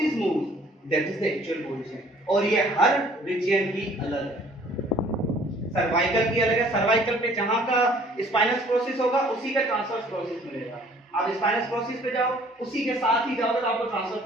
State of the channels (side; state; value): both; normal; correlation 0.56